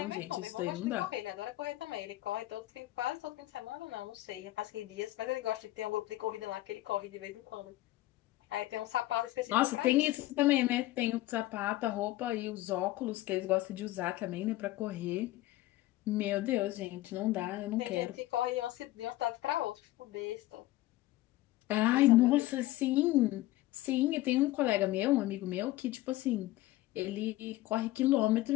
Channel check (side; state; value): right; quieter; 16.8 dB